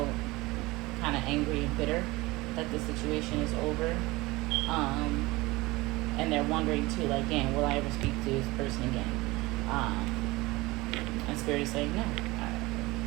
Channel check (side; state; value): left; quieter; 21.4 dB